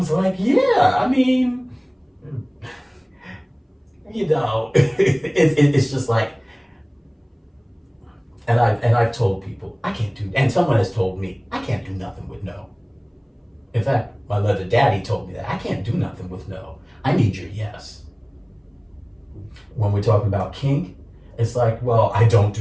like, yeah, I mean, you know, it's just like, and I've told people, I can't do, and someone has told me, I can't do nothing with no. In fact, my leather daddy told me that I can't do nothing with no. I need your yes. When we're talking about kink, it's like, well, I don't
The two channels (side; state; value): both; identical; correlation 1.00